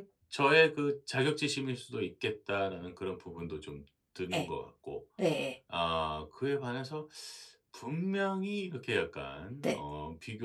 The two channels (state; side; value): identical; both; correlation 1.00